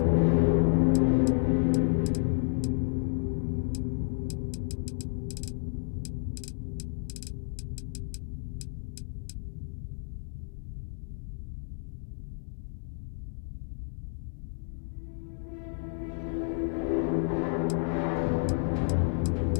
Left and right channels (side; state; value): right; silent; digital silence